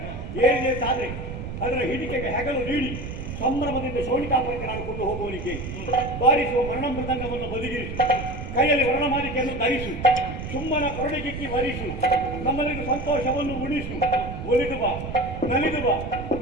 ಏರಿದಂತಾದ್ರೆ ಅದರ ಹಿಡಿಕೆಗೆ ಹೆಗಲು ನೀಡಿ ಸಂಭ್ರಮದಿಂದ ಶೋಣಿಕಾಪುರಕ್ಕೆ ನಾನು ಕೊಂಡು ಹೋಗುವವನಿಗೆ ಬಾರಿಸುವ ಮರಣ ಮೃದಂಗವನ್ನು ಬದಿಗಿರಿಸು, ಕೈಯಲ್ಲಿ ವರ್ಣಮಾಲಿಕೆಯನ್ನು ಧರಿಸು, ಸುಮ್ಮನ ಕೊರಡಿಕಿಕ್ಕಿ ವರಿಸು, ನಮ್ಮಲ್ಲಿಗೆ ಸಂತೋಷವನ್ನು ಉಳಿಸು. ಒಲಿದು ಬಾ, ನಲಿದು ಬಾ,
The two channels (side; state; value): right; noise; rumble, 7 dB below the sound